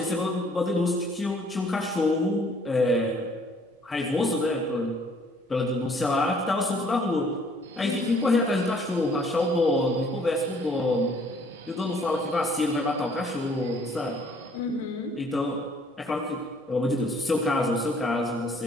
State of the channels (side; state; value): both; normal; correlation 0.60